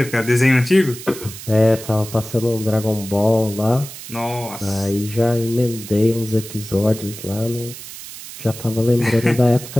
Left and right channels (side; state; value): right; noise; hiss, 13 dB below the sound